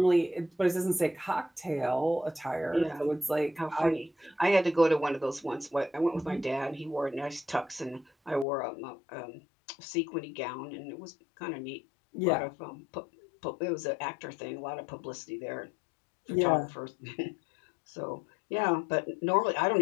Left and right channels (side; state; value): right; drops out; at 8.5 s